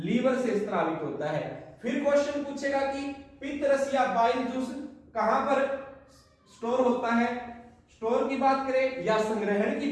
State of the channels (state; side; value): identical; both; correlation 1.00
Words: से स्रावित होता है। फिर क्वेश्चन पूछेगा कि पित्रस या बाइल जूस कहां पर स्टोर होता है। स्टोर की बात करें या संग्रहण की